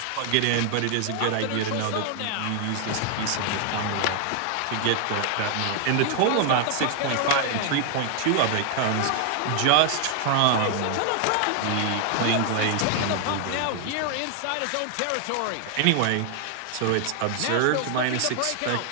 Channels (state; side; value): different; both; correlation 0.00